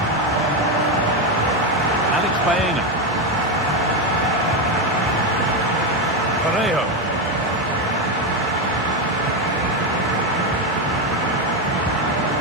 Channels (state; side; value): normal; both; correlation 0.10